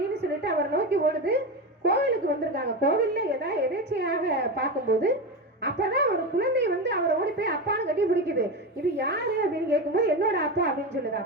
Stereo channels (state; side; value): normal; both; correlation 0.19